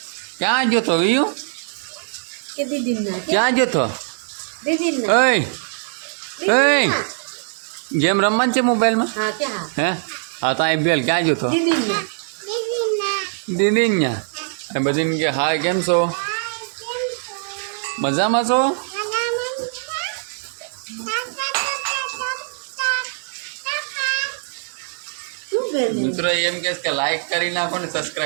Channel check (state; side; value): silent; left; 64 dB below the other